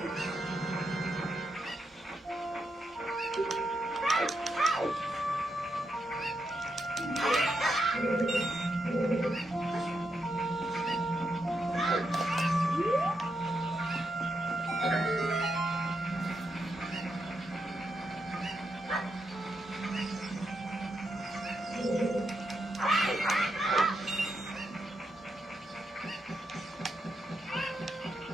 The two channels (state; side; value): normal; both; correlation 0.83